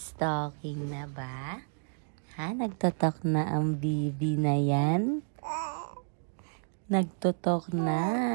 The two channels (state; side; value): silent; left; digital silence